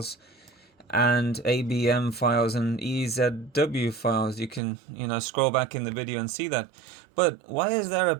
and ABM files and EZW files. You can, scroll back in the video and see that. But why is there a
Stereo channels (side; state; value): left; drops out; at 4.6 s